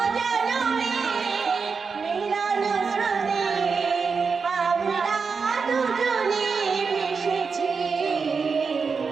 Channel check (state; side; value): quieter; left; 5.2 dB